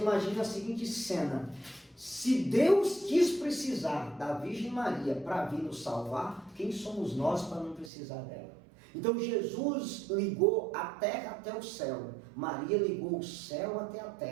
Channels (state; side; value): drops out; left; at 7.9 s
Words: a seguinte cena: se Deus quis precisar da Virgem Maria para vir nos salvar, quem somos nós para não precisar dela? Então Jesus ligou a terra até o céu, Maria ligou o céu até a